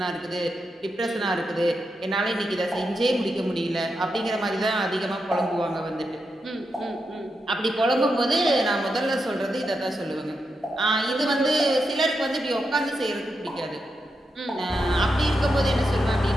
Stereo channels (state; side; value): normal; both; correlation 0.86